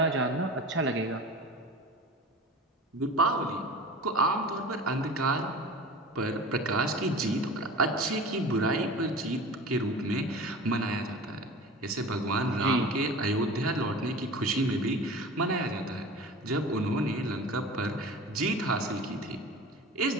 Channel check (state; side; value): normal; both; correlation 0.36